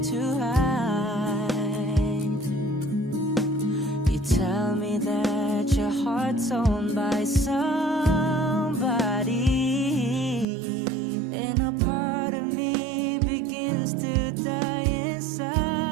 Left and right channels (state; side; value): drops out; left; at 10.5 s